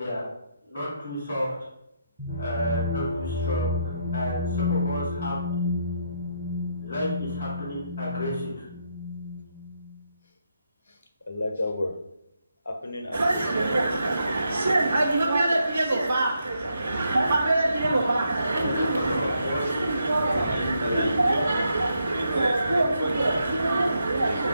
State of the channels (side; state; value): both; inverted; correlation -0.79